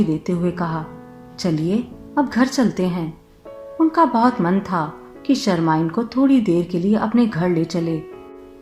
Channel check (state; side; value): identical; both; correlation 1.00